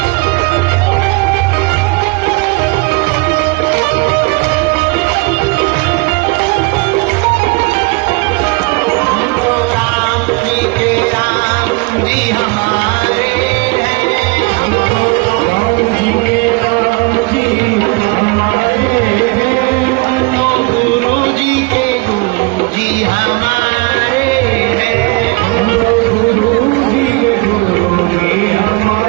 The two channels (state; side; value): quieter; left; 27.1 dB